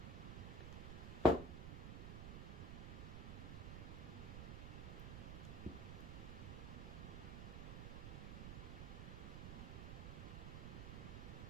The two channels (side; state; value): right; noise; rumble, 4 dB below the sound